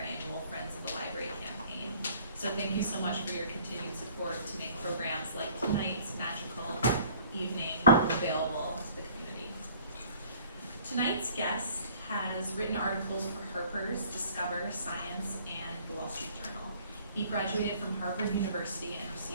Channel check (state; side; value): inverted; both; correlation -0.54